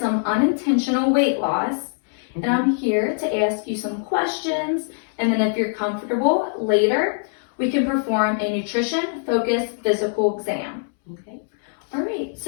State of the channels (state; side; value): silent; right; 64 dB below the other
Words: unintentional weight loss, and I'm here to ask you some questions, and then if you're comfortable, later we can perform a nutrition-focused physical exam. Okay. All right,